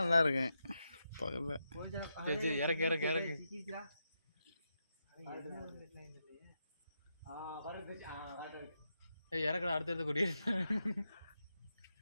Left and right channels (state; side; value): inverted; both; correlation -0.85